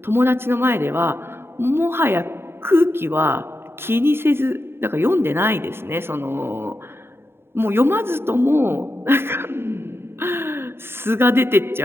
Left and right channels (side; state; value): left; late; 0.11 ms